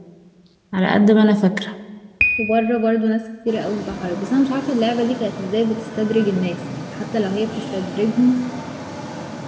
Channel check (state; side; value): identical; both; correlation 1.00